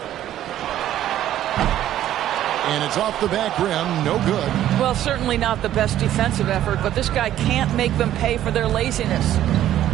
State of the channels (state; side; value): quieter; left; 12.3 dB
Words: And it's off the back rim. No good. Well, certainly not the best defensive effort, but this guy can't make them pay for their laziness.